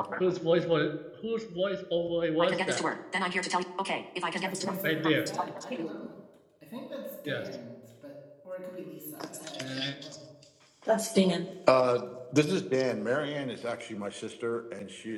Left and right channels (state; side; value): identical; both; correlation 1.00